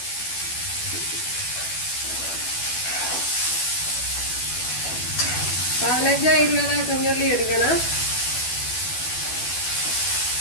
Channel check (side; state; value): right; late; 12 ms